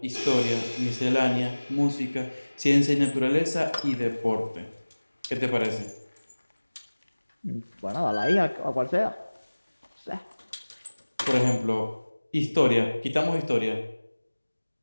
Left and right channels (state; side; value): inverted; both; correlation -1.00